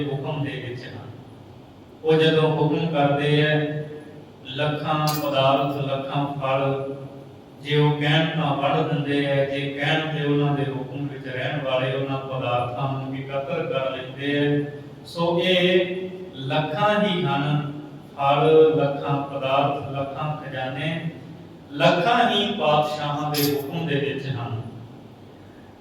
ਹੁਕਮ ਦੇ ਵਿੱਚ ਹਨ। ਉਹ ਜਦੋਂ ਹੁਕਮ ਕਰਦੇ ਹੈ, ਲੱਖਾਂ ਪਦਾਰਥ ਲੱਖਾਂ ਫਲ, ਜੇ ਉਹ ਕਹਿਣ ਤਾਂ ਵੜ ਦਿੰਦੇ ਹੈ, ਜੇ ਕਹਿਣ ਤੇ ਉਹਨਾਂ ਦੇ ਹੁਕਮ ਵਿੱਚ ਰਹਿਣ ਵਾਲੇ ਉਹਨਾਂ ਪਦਾਰਥਾਂ ਨੂੰ ਇਕੱਤਰ ਕਰ ਲੈਂਦੇ ਹੈ। ਸੋ ਇਹ ਲੱਖਾਂ ਹੀ ਹਨ, ਫਲ ਲੱਖਾਂ ਪਦਾਰਥ ਲੱਖਾਂ ਖਜ਼ਾਨੇ, ਲੱਖਾਂ ਹੀ ਪਾਤਸ਼ਾਹਾਂ ਦੇ ਹੁਕਮ ਦੇ ਵਿੱਚ ਹਨ।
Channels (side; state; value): both; identical; correlation 1.00